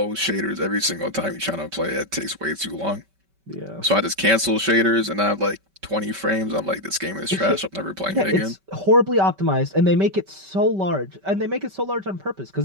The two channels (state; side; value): late; left; 5.2 ms